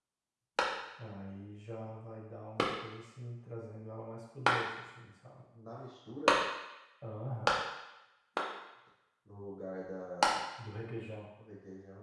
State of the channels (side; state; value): both; identical; correlation 1.00